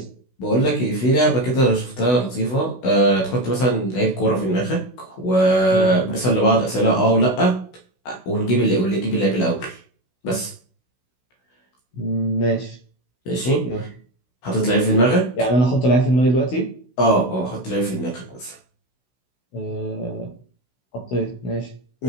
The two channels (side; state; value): right; late; 16 ms